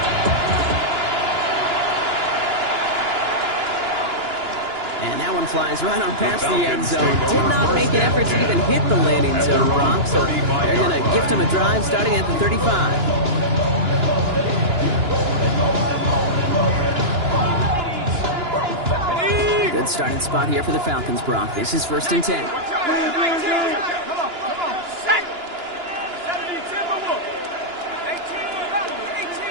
And that one flies right on past the end zone. Did not make an effort to even hit the landing zone, Brock. So they're going to gift him a drive starting at the 35. Good starting spot here for the Falcons, Brock. This is 1st and 10.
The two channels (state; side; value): late; left; 2.9 ms